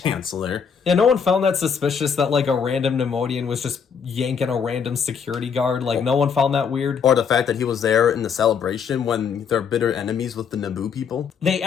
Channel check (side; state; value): right; quieter; 6.7 dB